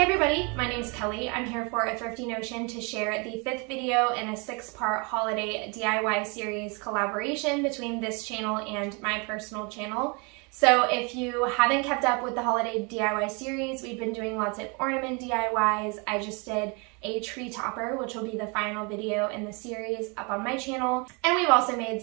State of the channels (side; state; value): left; quieter; 31.6 dB